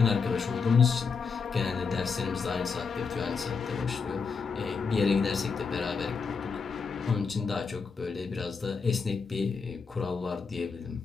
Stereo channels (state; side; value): quieter; right; 5.2 dB